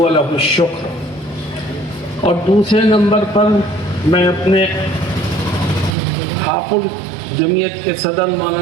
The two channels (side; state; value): left; drops out; at 6.0 s